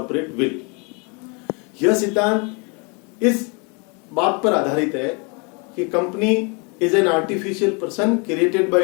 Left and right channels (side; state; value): right; quieter; 32.6 dB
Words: विल। यह सिद्धांत इस बात पर आधारित है कि company is an artificial person created by